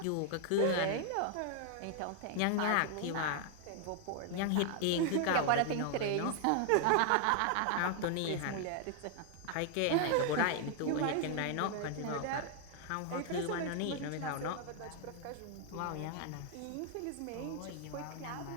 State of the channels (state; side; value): different; both; correlation 0.00